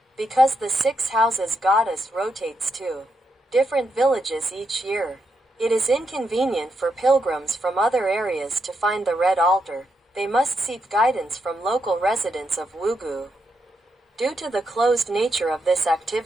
Because the 6 houses goddess rotates to different villages each year, it is inconvenient for pilgrims from other areas to find the red altar. They must seek guidance from local residents of Wugu. Due to the closed nature of this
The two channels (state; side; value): normal; both; correlation 0.82